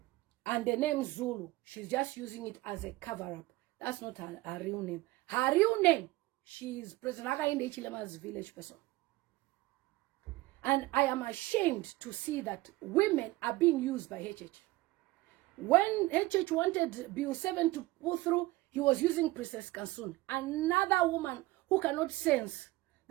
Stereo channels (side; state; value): left; quieter; 19.5 dB